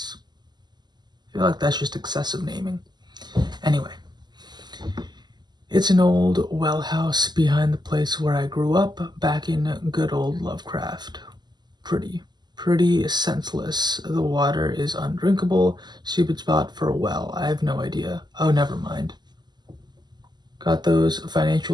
I feel like that's just excessive naming. Anyway, it's an old well house behind the place where I grew up back in good old Lovecraft. Pretty senseless. The water is undrinkable. Stupid spot for a well. I have no idea. Oh, never mind. Got those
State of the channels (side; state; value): left; late; 0.21 ms